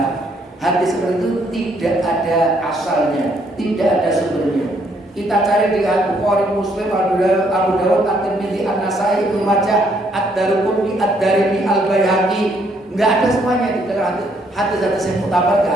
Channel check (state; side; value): normal; both; correlation 0.69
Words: hadis seperti itu tidak ada asalnya, tidak ada sumbernya. Kita cari di Bukhari, Muslim, Abu Dawud, At-Tirmidzi, An-Nasai, Ibnu Majah, Ad-Daruqutni, Ad-Darimi, Al-Baihaqi, enggak ada semuanya di dalam hadis-hadis yang mutabar, enggak